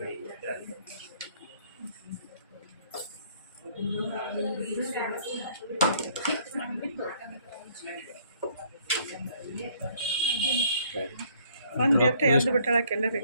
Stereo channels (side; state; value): both; inverted; correlation -0.62